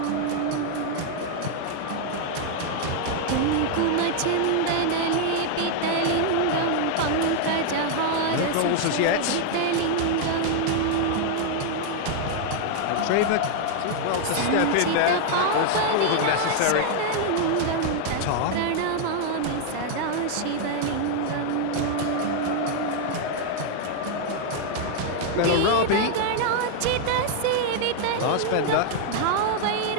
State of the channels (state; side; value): different; both; correlation 0.00